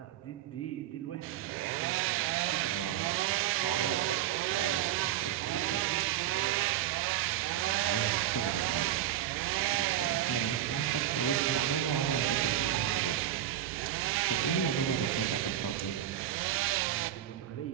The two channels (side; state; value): left; quieter; 11.8 dB